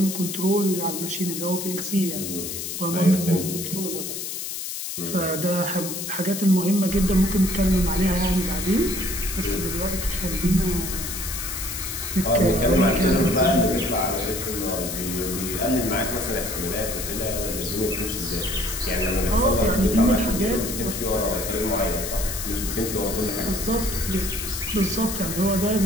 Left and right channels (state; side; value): noise; left; hiss, 5 dB below the sound